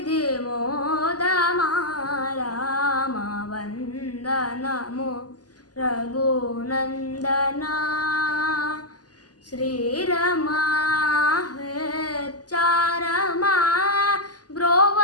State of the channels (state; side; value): late; right; 0.68 ms